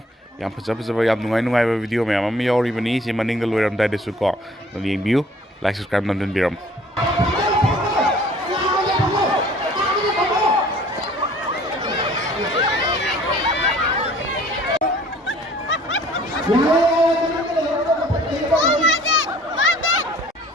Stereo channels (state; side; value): normal; both; correlation 0.53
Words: Yam Pazapa Yam Nungai video ma'am Yori Bani Simaning the lawyer Dada Suko the view like subscribe London Biram